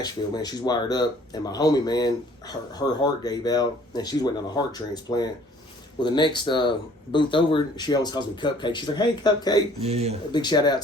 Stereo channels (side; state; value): both; normal; correlation 0.56